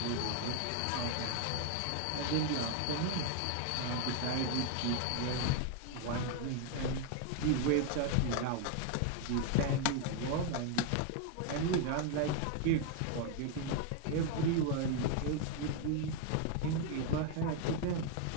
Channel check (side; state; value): both; different; correlation 0.01